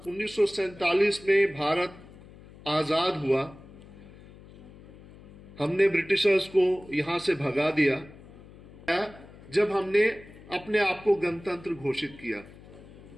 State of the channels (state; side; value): noise; left; hum, 20 dB below the sound